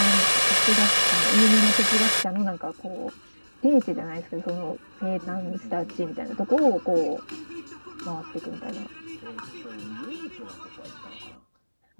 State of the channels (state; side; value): inverted; both; correlation -1.00